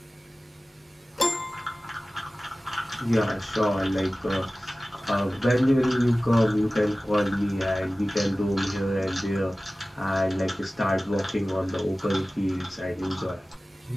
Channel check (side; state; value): both; normal; correlation 0.97